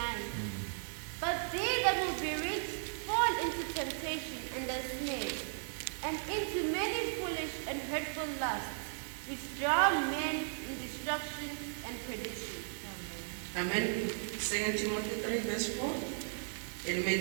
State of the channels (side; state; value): left; silent; 54 dB below the other